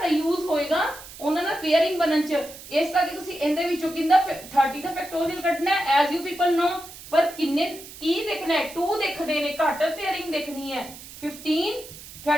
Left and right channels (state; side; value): noise; right; hiss, 16 dB below the sound